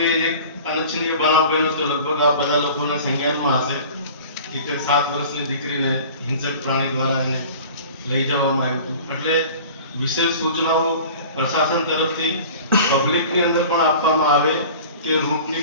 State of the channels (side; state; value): both; inverted; correlation -0.41